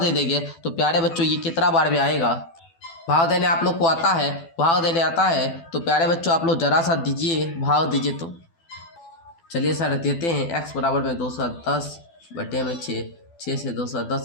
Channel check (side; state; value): right; late; 12 ms